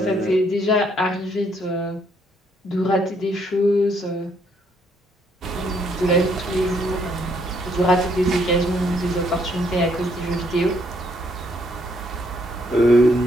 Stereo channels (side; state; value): both; normal; correlation 0.70